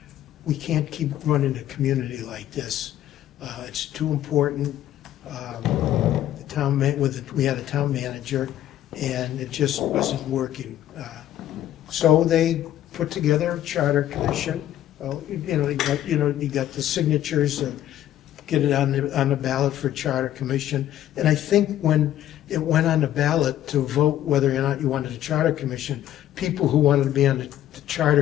we can't keep running a community like this. It's too important. We had a town manager, and it just wasn't working. So they put together a charter commission. You got the signatures and get it on the ballot for charter commission. And I think when it went on the ballot to vote whether or not you wanted a charter commission, people who wanted to be on the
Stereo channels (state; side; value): quieter; right; 12.4 dB